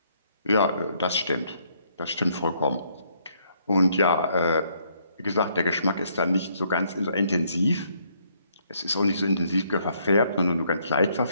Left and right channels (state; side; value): inverted; both; correlation -0.69